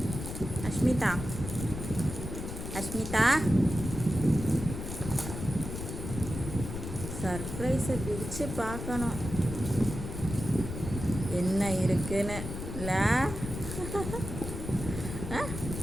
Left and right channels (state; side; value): noise; left; rumble, 7 dB below the sound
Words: அஷ்மிதா அஷ்மிதா சர்ப்ரைஸை பிரித்து பார்க்கணும் என்ன இருக்குன்னு இல்லை.